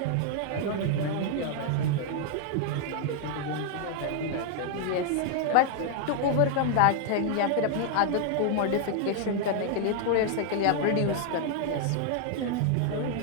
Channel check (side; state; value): both; different; correlation 0.00